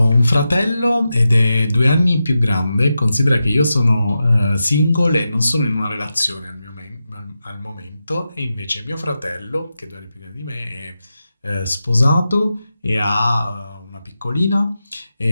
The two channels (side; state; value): both; inverted; correlation -0.90